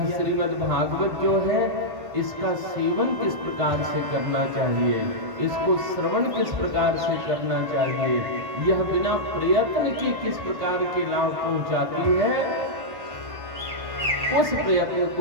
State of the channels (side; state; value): left; late; 1.5 ms